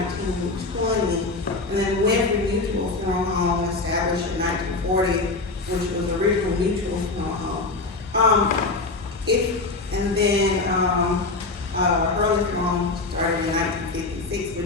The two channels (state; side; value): quieter; right; 3.5 dB